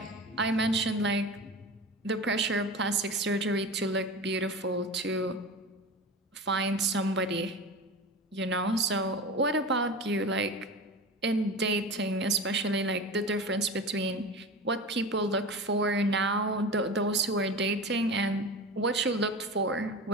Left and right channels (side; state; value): both; normal; correlation 0.30